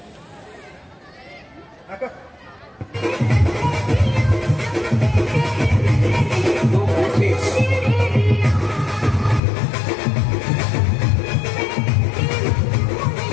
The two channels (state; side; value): drops out; right; at 9.4 s